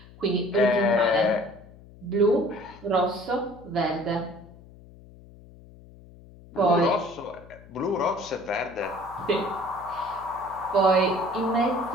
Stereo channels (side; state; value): left; noise; hum, 21 dB below the sound